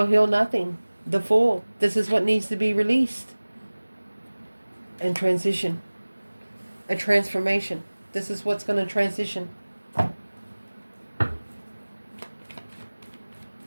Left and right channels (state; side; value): inverted; both; correlation -1.00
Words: heal nothing. The Fool. This is what needs to be released. And transition. A transformation. This is what's going to transition.